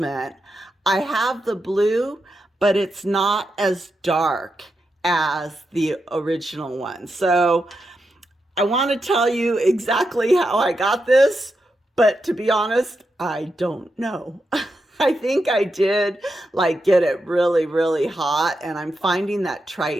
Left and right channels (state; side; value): normal; both; correlation 0.86